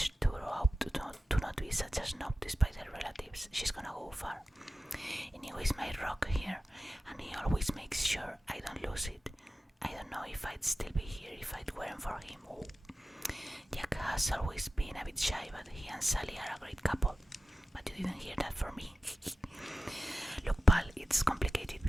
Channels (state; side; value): normal; both; correlation 0.94